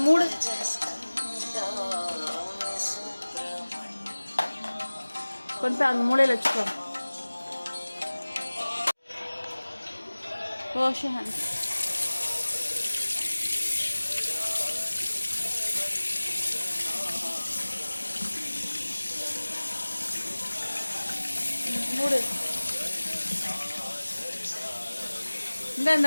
மூடு. கொண்டு போய் அங்கே மூலையில் வச்சுக்கோ. Wash your hands. மூடு.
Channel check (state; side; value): inverted; both; correlation -1.00